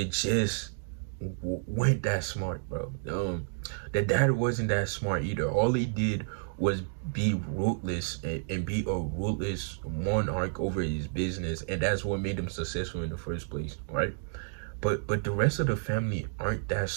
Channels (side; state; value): left; silent; digital silence